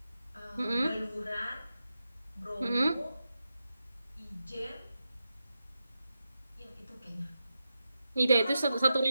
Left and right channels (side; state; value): both; inverted; correlation -0.89